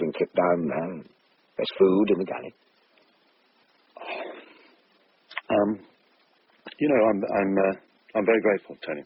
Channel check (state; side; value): identical; both; correlation 1.00